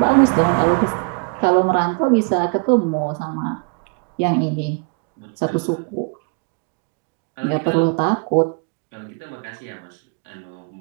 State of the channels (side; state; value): left; quieter; 35.2 dB